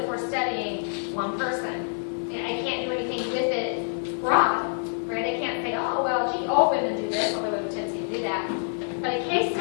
for studying one person. And I can't do anything with it broad, right? I can't say, oh, well, gee, all women do this, although I have a tendency to do that. But a case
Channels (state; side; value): silent; right; digital silence